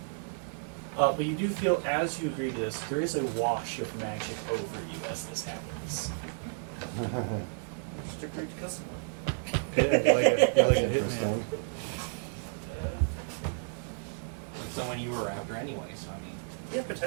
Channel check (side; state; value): left; silent; digital silence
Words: But you do feel, as you agree to this, there is a wash of magic over you as this happens. Just agreed to custom one. That's interesting. But someone you were after anyway, so I mean, Yeah,